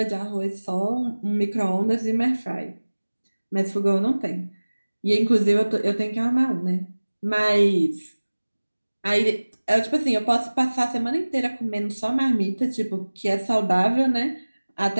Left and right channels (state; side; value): inverted; both; correlation -1.00